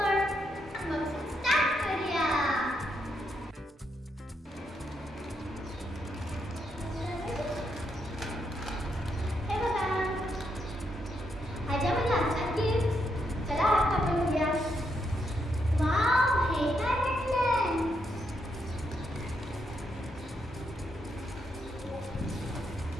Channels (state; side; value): normal; both; correlation 0.79